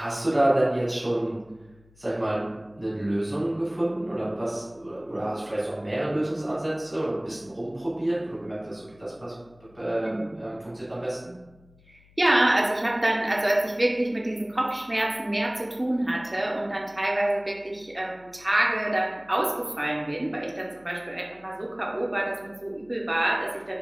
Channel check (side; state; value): left; noise; hum, 28 dB below the sound